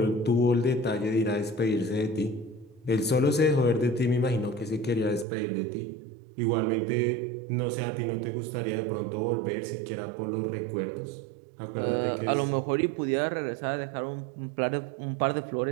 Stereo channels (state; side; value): drops out; left; at 5.2 s